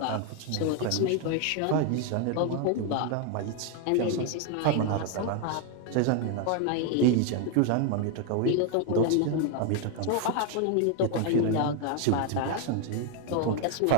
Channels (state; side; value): different; both; correlation 0.01